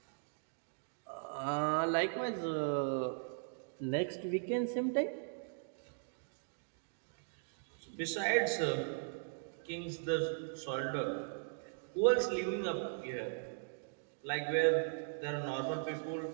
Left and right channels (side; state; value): left; silent; digital silence